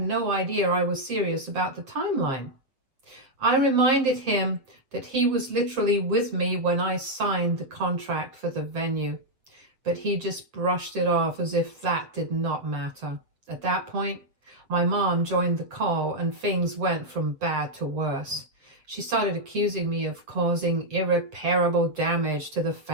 no idea I was serious about the timeline. I reminded him that he was literally with me when I signed the contract for the venue, but he just brushed it off as if that did not matter. At that point, my mom joined the call and things went from bad to worse. She started accusing me of causing irreparable damage to the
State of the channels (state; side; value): late; left; 7.6 ms